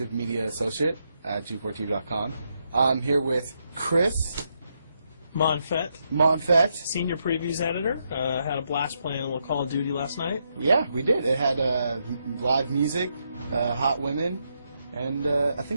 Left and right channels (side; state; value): both; inverted; correlation -0.80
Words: Media Associate at G4TV.com. I'm here with Chris Monfett, Senior Previews Editor. Had a blast playing a little Call of Duty last night. Yeah, we did. It had live music, hot women, and I